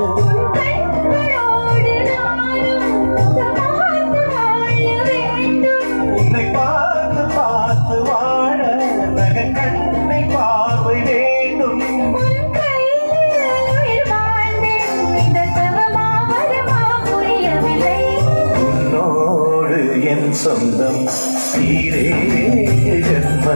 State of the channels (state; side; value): inverted; both; correlation -1.00